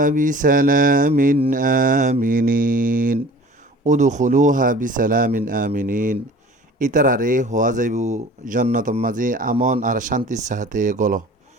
বিসালামিন আমিনিন উদখুলুহা বিসালামিন আমিনিন ইতারারে হওয়া যাইব জন্নতর মাঝে আমন আর শান্তির সাথে গল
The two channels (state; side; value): normal; both; correlation 0.45